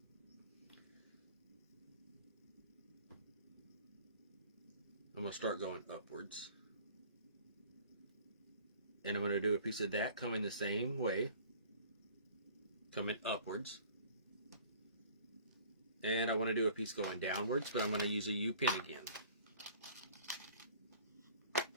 I'm going to start going upwards. And I'm going to do a piece of that coming the same way. Coming upwards. And I want to do a piece going downwards, but I'm going to use a U-pin again.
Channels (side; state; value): both; inverted; correlation -0.49